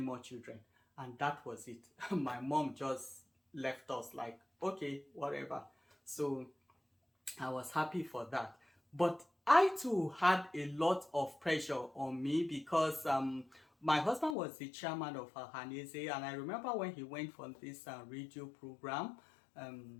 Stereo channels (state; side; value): drops out; right; at 14.4 s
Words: children. And that was it. My mom just left us like, okay, whatever. So I was happy for that. But I too had a lot of pressure on me because my husband was the chairman of Hanese, and I remember when he went for this radio program